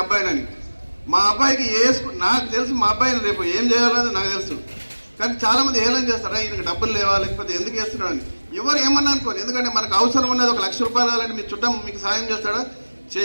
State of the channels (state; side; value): inverted; both; correlation -1.00